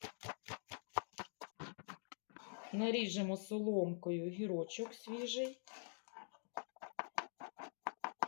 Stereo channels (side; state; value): right; silent; digital silence